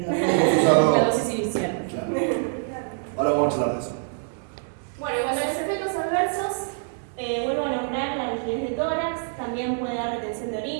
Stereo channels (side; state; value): left; silent; 62 dB below the other